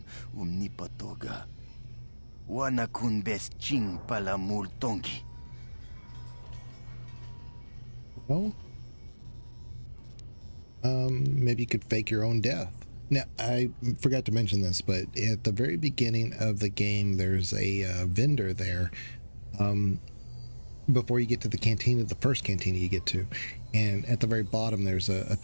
umnipatoga. Wana kun best ching pala multongi. Well, maybe you could fake your own death. Now, I forgot to mention this, but at the very beginning of the game, there's a vendor there. Before you get to the cantina, the first cantina you get to, and at the very bottom there's a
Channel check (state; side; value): inverted; both; correlation -1.00